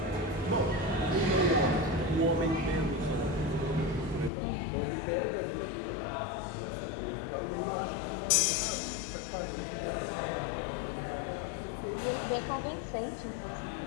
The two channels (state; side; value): drops out; right; at 4.3 s